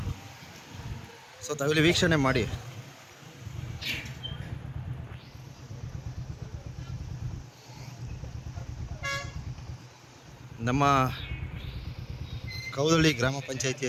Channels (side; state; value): both; identical; correlation 1.00